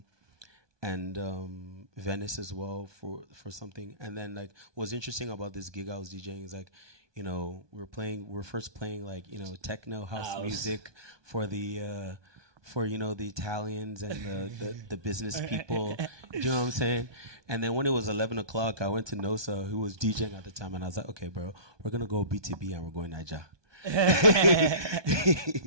Venice as well for something. And then like what's interesting about this gig I was DJing is like, you know, we're first playing like, you know, techno house music for the the Italians and the business people. You know what I'm saying? And then when it was 11 o'clock, I went to Nosa, who was DJing at the time, and I was like, okay, bro, we're going to go BTB and we're going Niger.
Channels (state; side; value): late; left; 1.2 ms